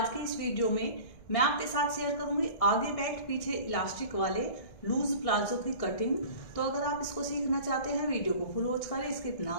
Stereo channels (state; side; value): late; right; 1.6 ms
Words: की इस वीडियो में मैं आपके साथ शेयर करूंगी आगे बेल्ट पीछे इलास्टिक वाले लूज प्लाजो की कटिंग। तो अगर आप इसको सीखना चाहते हैं, वीडियो को फुल वॉच करें, स्किप